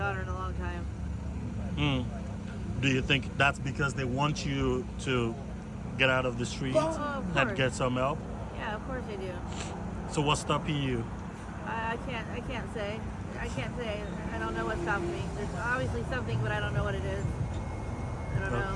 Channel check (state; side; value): identical; both; correlation 1.00